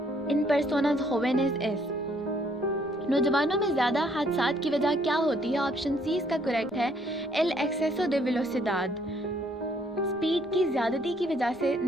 en personas jóvenes es. نوجوانوں میں زیادہ حادثات کی وجہ کیا ہوتی ہے؟ آپشن سی اس کا کریکٹ ہے. El exceso de velocidad. Speed کی زیادتی کی وجہ سے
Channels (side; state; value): left; noise; rumble, 29 dB below the sound